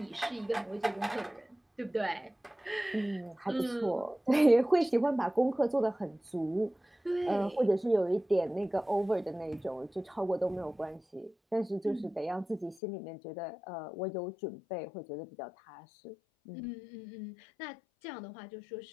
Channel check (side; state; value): right; drops out; at 12.8 s